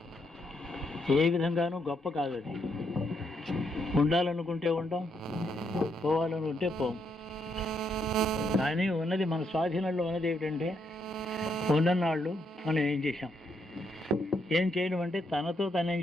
ఏ విధంగానూ గొప్ప కాదు. అది ఉండాలనుకుంటే ఉంటాం, పోవాలనుకుంటే పోం. కానీ ఉన్నది మన స్వాధీనంలో ఉన్నది ఏమిటంటే, ఉన్ననాళ్ళు మనం ఏం చేశాం. ఏం చేయడం అంటే తనతో తనేం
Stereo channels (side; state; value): both; normal; correlation 0.77